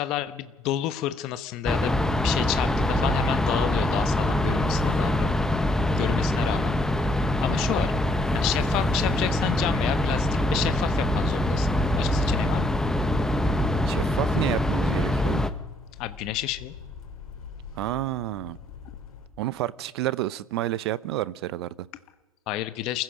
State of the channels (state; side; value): normal; both; correlation 0.67